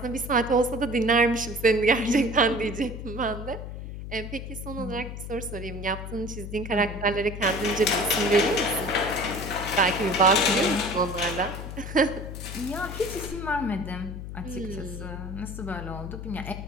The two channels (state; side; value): noise; left; hum, 8 dB below the sound